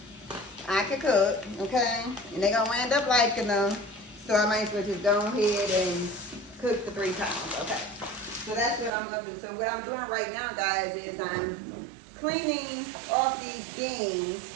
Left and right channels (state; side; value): drops out; left; at 8.9 s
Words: Okay? And they gonna end up liking them. So I might as well just go ahead and cook the 3 pounds. Okay. So that's what I'm looking. So what I'm doing right now, guys, is I'm cleaning off these beans